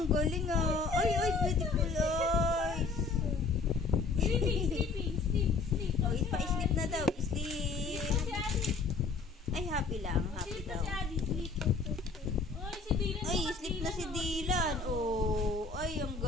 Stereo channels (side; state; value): right; quieter; 4.2 dB